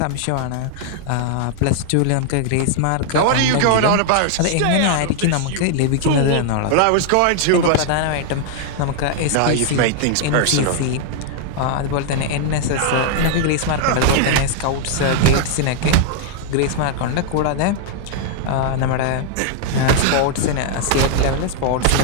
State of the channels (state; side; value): different; both; correlation 0.00